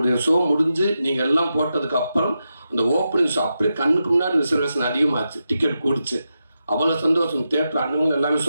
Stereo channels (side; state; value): both; inverted; correlation -0.88